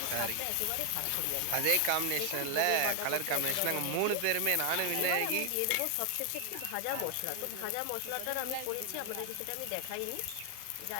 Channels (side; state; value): both; different; correlation 0.00